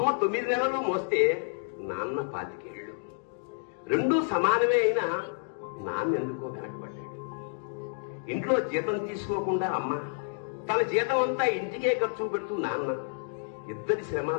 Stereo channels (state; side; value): silent; right; digital silence